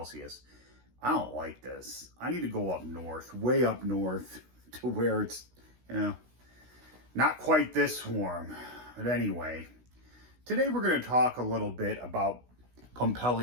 I don't like this. I need to go up north, way up north to where it's not quite this warm. But anyway, today we're going to talk a little bit about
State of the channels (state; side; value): late; left; 16 ms